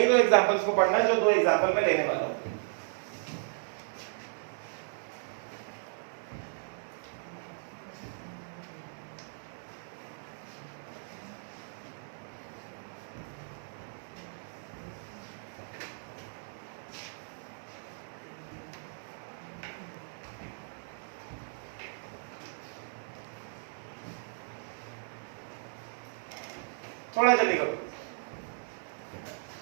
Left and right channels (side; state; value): left; silent; digital silence